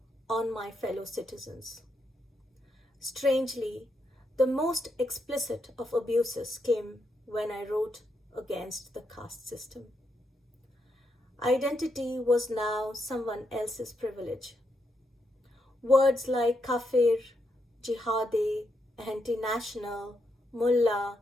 on my fellow citizens. Strangely, the most explicit of abuses came when I wrote against the caste system. Identity was now someone else's privilege. Words like kafir, jihadi, anti-national, mullah,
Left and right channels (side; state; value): both; normal; correlation 0.81